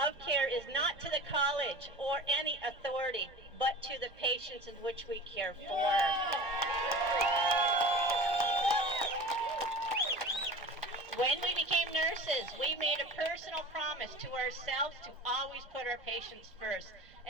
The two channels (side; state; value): both; normal; correlation 0.37